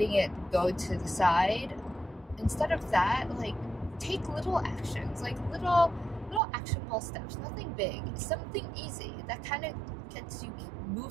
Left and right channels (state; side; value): drops out; left; at 6.4 s